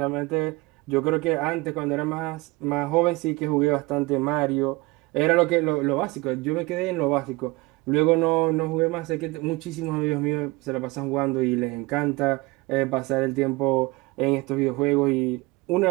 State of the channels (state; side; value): quieter; left; 23.2 dB